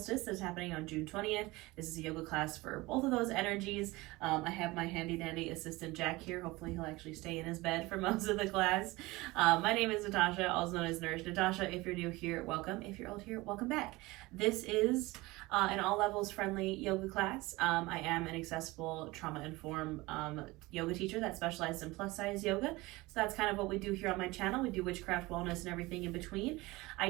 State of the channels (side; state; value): left; quieter; 21.3 dB